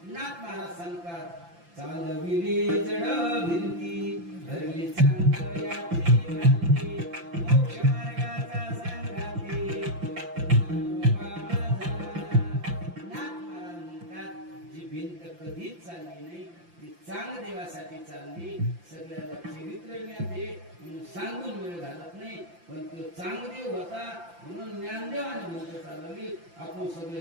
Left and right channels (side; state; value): left; late; 5.8 ms